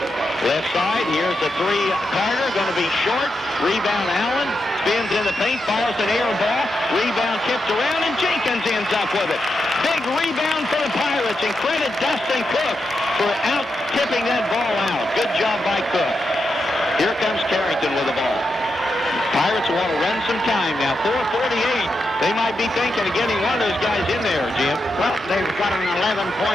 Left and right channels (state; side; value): normal; both; correlation 0.86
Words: Left side, here's the three. Carter going to be short. Rebound Allen. Spins in the paint, fires an air ball. Rebound tipped around, and Jenkins ends up with it. Big rebound for the Pirates, and credit Dustin Cook for out-tipping that ball out. Good job by Cook. Here comes Carrington with the ball. Pirates want to run some time now. 4:48. They might be thinking of getting one of those guys in there, Jim. Well, they've got an